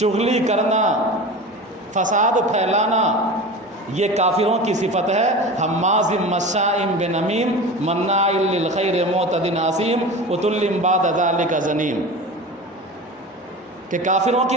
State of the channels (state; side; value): normal; both; correlation 0.32